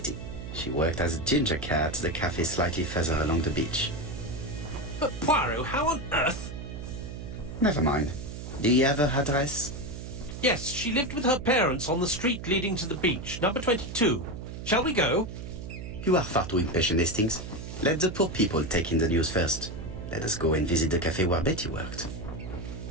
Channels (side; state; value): right; noise; hum, 9 dB below the sound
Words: She worked as a ginger cat at the cafe slightly further along the beach. But Poirot, how on earth? Never mind. Do you have her address? Yes, she lived with her parents on the street leading to the beach, number 22. Shall we go? You are far too impatient, Hastings. Let the poor people take in the news first. Let us go and visit the cafe where Betty worked.